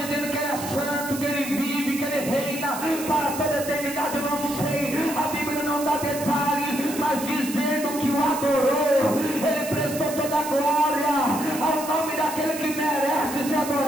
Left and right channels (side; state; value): right; noise; hiss, 10 dB below the sound